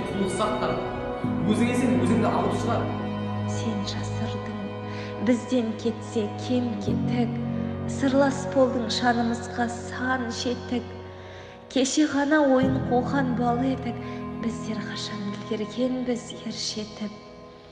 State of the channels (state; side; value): identical; both; correlation 1.00